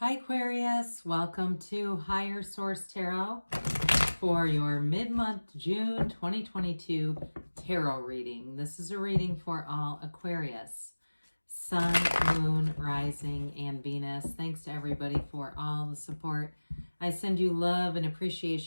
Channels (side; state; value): both; inverted; correlation -1.00